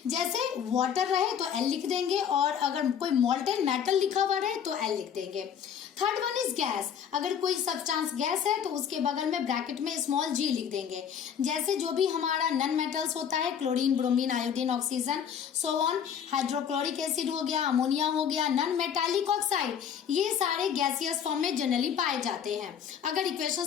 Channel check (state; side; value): quieter; right; 8.2 dB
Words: जैसे वाटर रहे तो एल लिख देंगे और अगर कोई मोल्टेन मेटल लिखा हुआ रहे तो एल लिख देंगे। थर्ड वन इज गैस, अगर कोई सब्सटेंस गैस है तो उसके बगल में ब्रैकेट में स्मॉल जी लिख देंगे। जैसे जो भी हमारा नन मेटल्स होता है, chlorine, bromine, iodine, oxygen, so on, hydrochloric acid हो गया, अमोनिया हो गया, नन मेटालिक ऑक्साइड, ये सारे गैसियस फॉर्म में जनरली पाए जाते हैं अगर